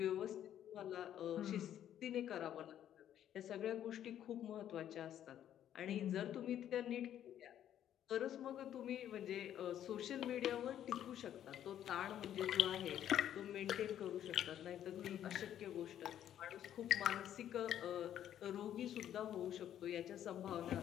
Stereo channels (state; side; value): quieter; right; 10.8 dB